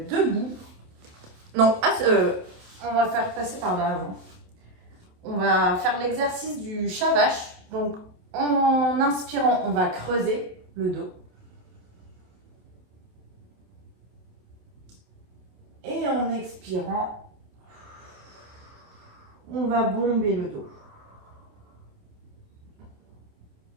Non, on va faire passer par là avant. On va faire l'exercice du chat vache. Donc, en inspirant, on va creuser le dos. Et en expirant, on va bomber le dos.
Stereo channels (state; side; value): late; left; 28 ms